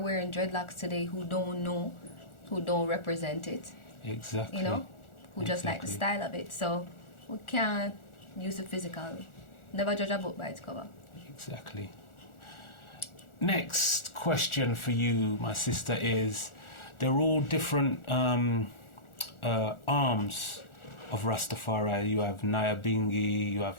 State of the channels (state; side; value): late; right; 1.4 ms